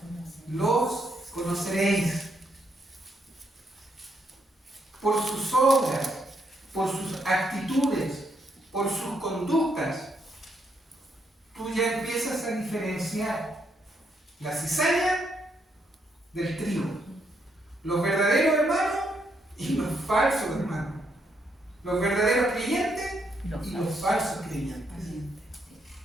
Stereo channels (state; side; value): normal; both; correlation 0.76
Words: los conoceréis. Por sus obras, por sus actitudes, por sus conductas, tú ya empiezas a diferenciar la cizaña del trigo, los verdaderos hermanos y los falsos hermanos, los verdaderos creyentes y los falsos creyentes.